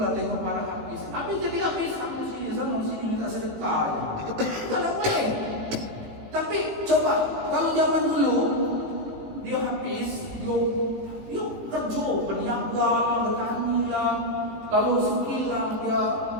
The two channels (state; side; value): late; left; 18 ms